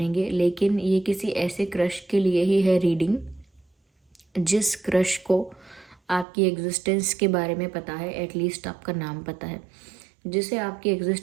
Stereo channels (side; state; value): left; drops out; at 6.2 s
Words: लेकिन ये किसी ऐसे क्रश के लिए ही है रीडिंग जिस क्रश को आपकी एग्जिस्टेंस के बारे में पता है, एटलीस्ट आपका नाम पता है। जिसे आपकी